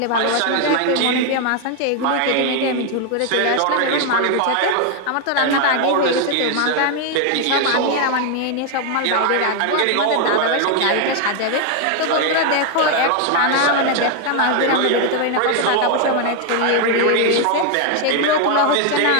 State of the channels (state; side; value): different; both; correlation 0.01